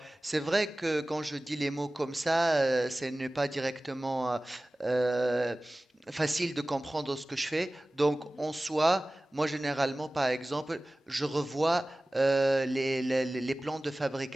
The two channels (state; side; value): normal; both; correlation 0.98